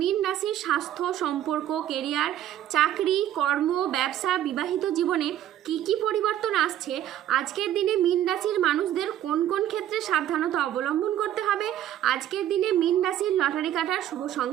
রাশির স্বাস্থ্য, সম্পর্ক, কেরিয়ার, চাকরি, কর্ম, ব্যবসা, বিবাহিত জীবনে কি কি পরিবর্তন আসছে, আজকের দিনে মীন রাশির মানুষদের কোন কোন ক্ষেত্রে সাবধানতা অবলম্বন করতে হবে, আজকের দিনে মীন রাশির লটারি কাটার শুভ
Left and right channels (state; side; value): quieter; left; 11.9 dB